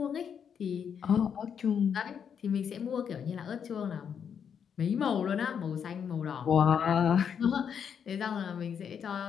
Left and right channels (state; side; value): quieter; right; 7.6 dB